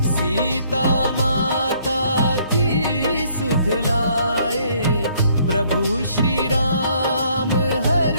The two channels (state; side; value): inverted; both; correlation -0.64